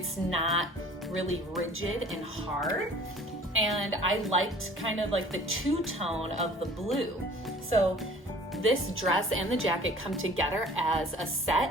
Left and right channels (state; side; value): normal; both; correlation 0.49